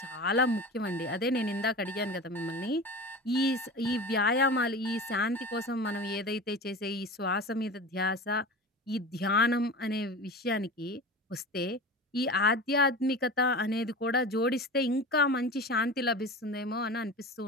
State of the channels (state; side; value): normal; both; correlation 0.32